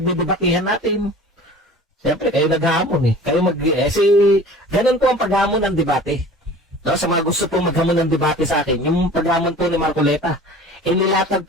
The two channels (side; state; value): both; normal; correlation 0.42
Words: natin. Siyempre, kayo nag-aamon eh. Ganun po ang pag-aamon ng debate. No, sa mga gusto po maghamon ng debate sa akin, yung paghamon po ni Marcoleta, inilatag